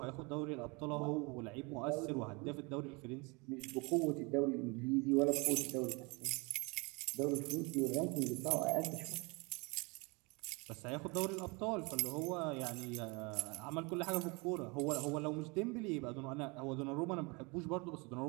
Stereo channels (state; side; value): quieter; left; 28.5 dB